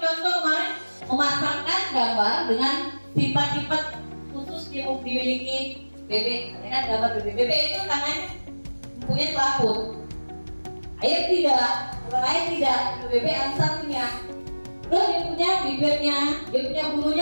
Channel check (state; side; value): inverted; both; correlation -1.00